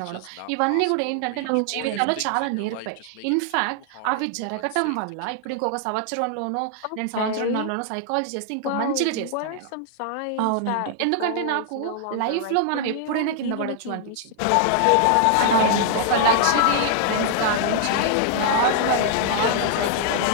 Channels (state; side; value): different; both; correlation 0.00